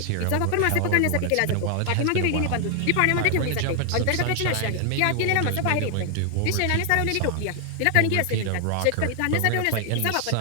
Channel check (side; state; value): both; different; correlation 0.00